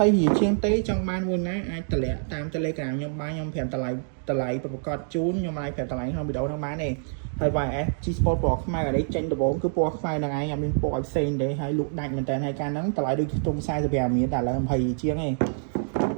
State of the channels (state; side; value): silent; left; digital silence